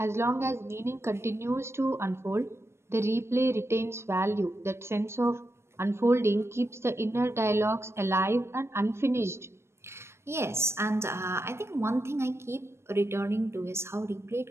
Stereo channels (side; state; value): left; late; 0.13 ms